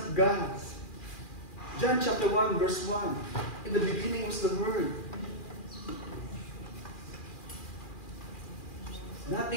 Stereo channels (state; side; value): late; right; 2.4 ms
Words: of God. John chapter 1 verse 1. In the beginning was the Word.